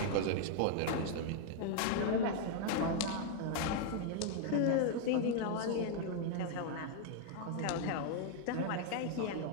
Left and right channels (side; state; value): both; different; correlation 0.00